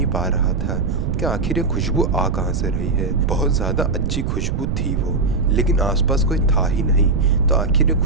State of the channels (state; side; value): noise; right; rumble, 1 dB below the sound